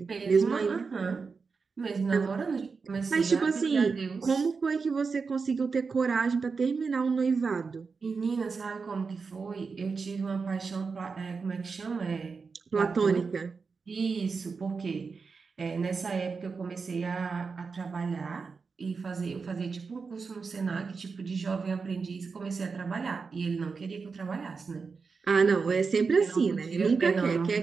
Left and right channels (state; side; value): quieter; left; 4.9 dB